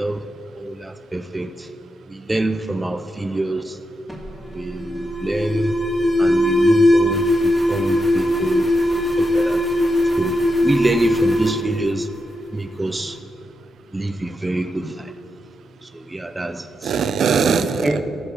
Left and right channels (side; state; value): both; normal; correlation 0.86